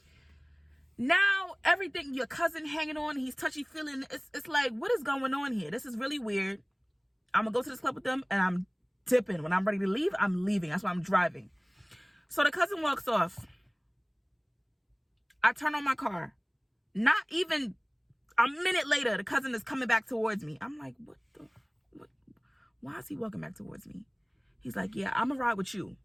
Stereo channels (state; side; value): identical; both; correlation 1.00